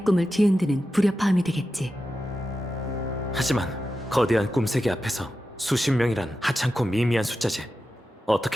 꿈을 뒤흔드는 불협화음이 되겠지. 하지만 거대한 꿈세계 앞에서 수십 명이란 하찮고 미미한 숫자지.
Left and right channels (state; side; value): normal; both; correlation 0.91